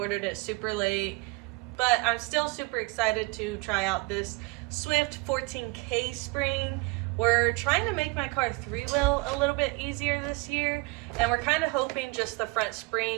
it super late, but I'm still super excited to try out this Swift 14K spring. We're trying to make my car three-wheel a little bit easier this year, and we're kind of hoping just the front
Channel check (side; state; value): left; quieter; 25.4 dB